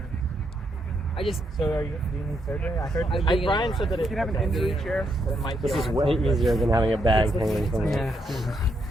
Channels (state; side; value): normal; both; correlation 0.78